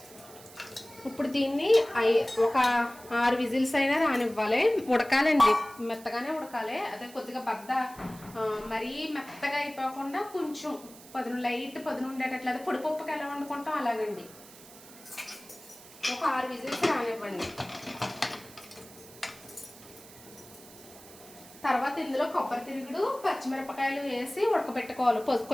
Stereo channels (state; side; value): noise; right; hiss, 19 dB below the sound